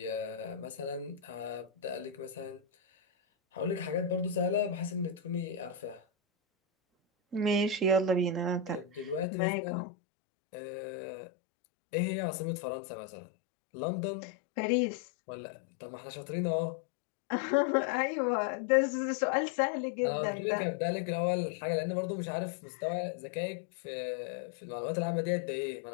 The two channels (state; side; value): drops out; right; at 9.2 s